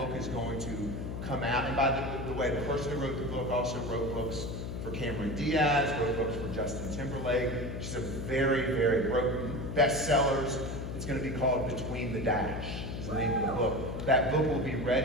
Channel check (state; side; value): noise; left; hum, 5 dB below the sound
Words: is going to come out. And by the way, the person who wrote the book also wrote books for Cameron Diaz, wrote books for Justin Timberlake. She's a very, very bestsellers. It's going to be called Between the Dash, is the name of the book. That book will be